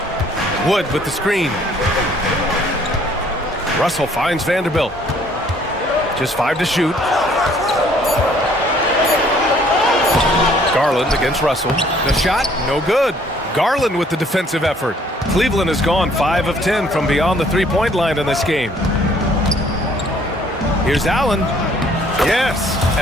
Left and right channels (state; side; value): normal; both; correlation 0.60